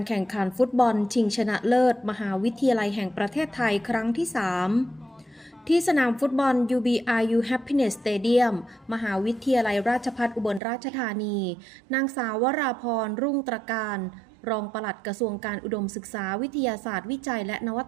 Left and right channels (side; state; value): left; drops out; at 10.6 s